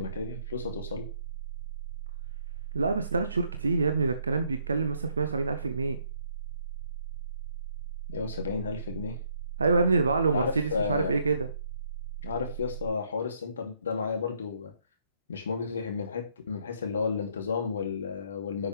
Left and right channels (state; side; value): inverted; both; correlation -0.68